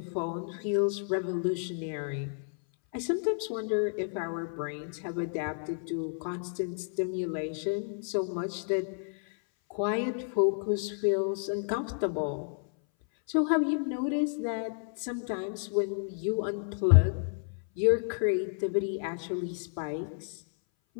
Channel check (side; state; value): right; silent; 57 dB below the other